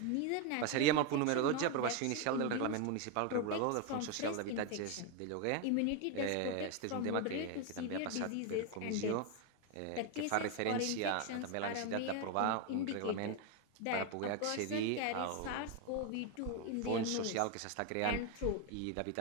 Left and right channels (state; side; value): different; both; correlation 0.02